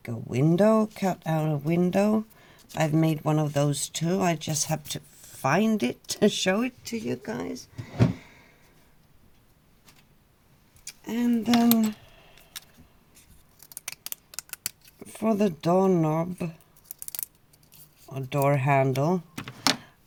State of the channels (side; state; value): both; identical; correlation 1.00